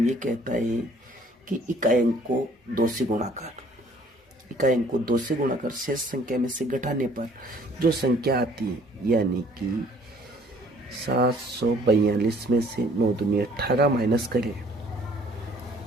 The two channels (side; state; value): both; normal; correlation 0.58